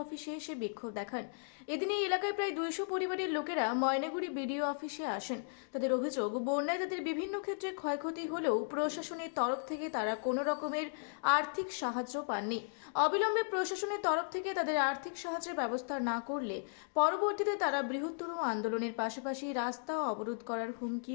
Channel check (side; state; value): right; silent; digital silence